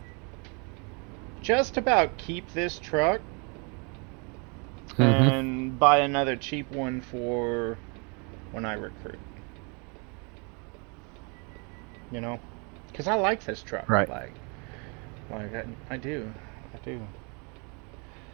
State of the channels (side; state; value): left; quieter; 33.7 dB